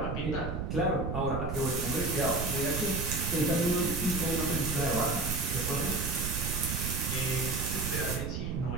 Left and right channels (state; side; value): noise; right; rumble, 2 dB below the sound